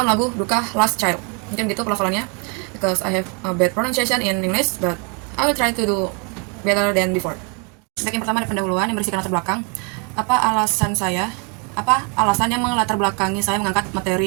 lagu Duka Last Child. Mungkin gitu pelafalannya, because I have a bad pronunciation in English, but I will try to do better than before. Baik, yang pertama ada pendahuluan yang berisikan latar belakang. Apa alasan yang melatar belakangi saya mengangkat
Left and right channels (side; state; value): left; quieter; 35.5 dB